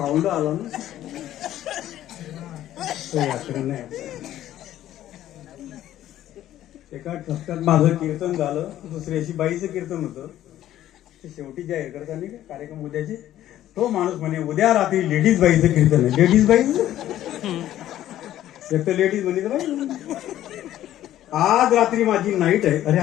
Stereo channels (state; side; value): quieter; right; 12.8 dB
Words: आला ना, तो व्याकरण नाही. एका ठसक्यात माझं कीर्तन झालं, दुसऱ्याशी बाईचं कीर्तन होतं. ते शेवटी जाहीर करताना का कार्यक्रम उद्याचे, तो माणूस म्हणे उद्या रात्री लेडीज बाईचं कीर्तन आहे. लेडीज बाईच एक तर लेडीज म्हणे बाई, आज रात्री माझी नाईट आहे. अरे